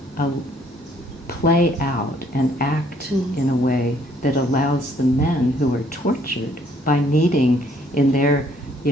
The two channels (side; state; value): both; normal; correlation 0.64